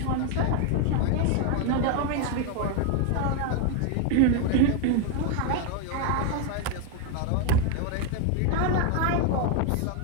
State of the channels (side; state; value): both; different; correlation 0.01